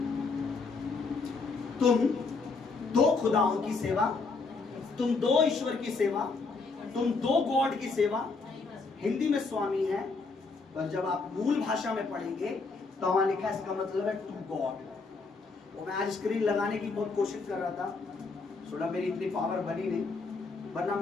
तुम दो खुदाओं की सेवा, तुम दो ईश्वर की सेवा, तुम दो गॉड की सेवा, हिंदी में स्वामी है, पर जब आप मूल भाषा में पढ़ेंगे तो वहां लिखा है, इसका मतलब है टू गॉड। वो मैं आज स्क्रीन लगाने की बहुत कोशिश कर रहा था, थोड़ा मेरी इतनी पावर बनी नहीं, वरना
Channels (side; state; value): right; quieter; 4.2 dB